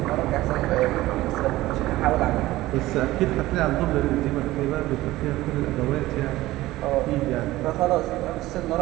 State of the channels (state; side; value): quieter; left; 17.2 dB